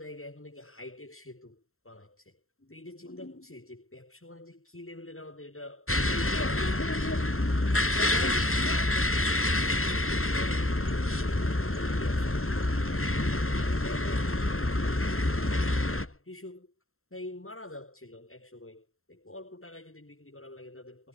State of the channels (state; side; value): late; right; 0.62 ms